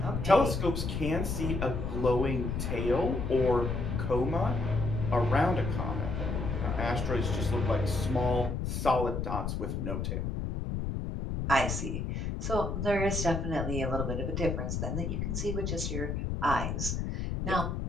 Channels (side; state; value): left; noise; rumble, 2 dB below the sound